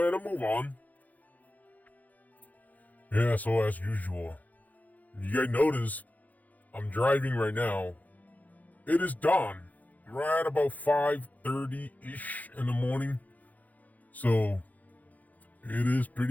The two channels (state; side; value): late; right; 0.079 ms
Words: and move on. Yeah, so as usual, you guys notice I'm driving right now. It is dawn. Right about 5:30-ish in the morning. So it is